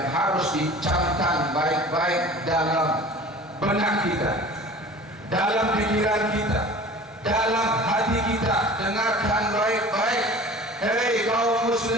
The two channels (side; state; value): both; normal; correlation 0.42